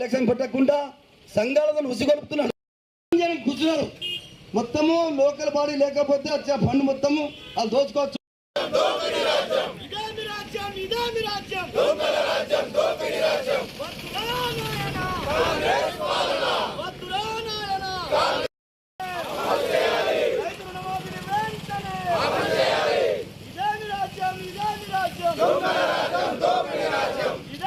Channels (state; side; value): identical; both; correlation 1.00